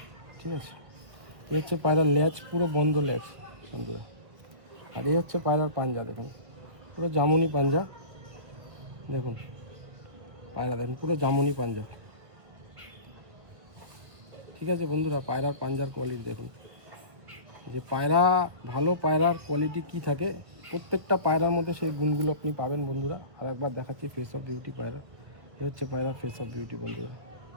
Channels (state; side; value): late; left; 1.6 ms